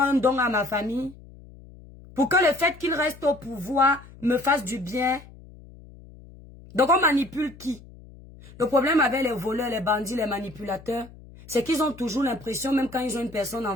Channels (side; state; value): left; noise; hum, 20 dB below the sound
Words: un don à ma famille. Pour que le fait qu'il reste au pouvoir me fasse du bien. Donc on manipule qui? Le problème avec les voleurs, les bandits, les manipulateurs, c'est qu'ils ont toujours l'impression, même quand ils ont une personne